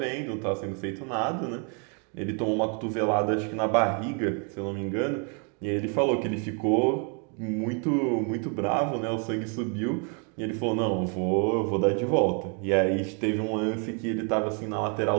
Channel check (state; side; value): quieter; left; 38.5 dB